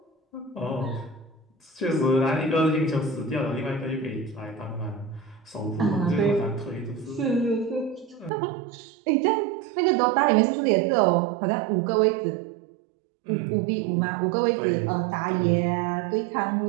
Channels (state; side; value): drops out; left; at 8.3 s